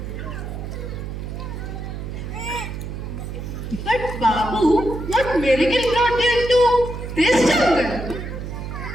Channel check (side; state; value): right; noise; hum, 7 dB below the sound